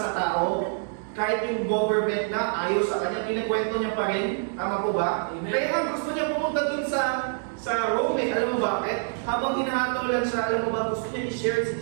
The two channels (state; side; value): silent; left; digital silence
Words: tao? Kahit yung government na ayaw sa kanya, kinakwento niya pa rin. Tama po ba? Amen. Kaya nga gusto niya pumunta dun sa sa Rome. Alam mo bakit? Habang hinahatulan siya, alam mo ba, gusto niya i-share si